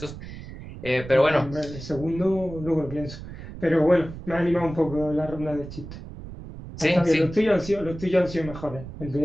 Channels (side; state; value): right; noise; rumble, 12 dB below the sound